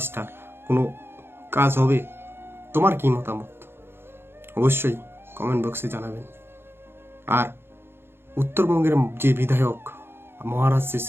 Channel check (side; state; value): left; late; 0.11 ms